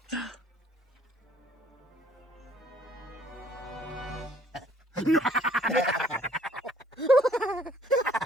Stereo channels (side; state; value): both; normal; correlation 0.60